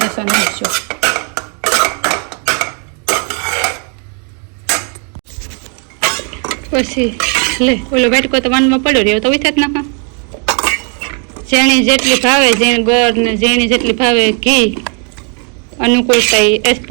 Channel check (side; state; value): left; quieter; 39.5 dB